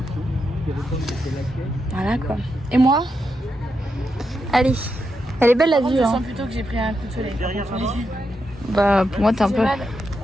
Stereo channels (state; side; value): normal; both; correlation 0.84